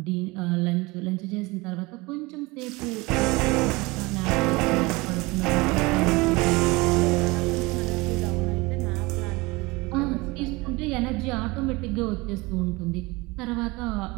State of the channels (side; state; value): left; quieter; 23.6 dB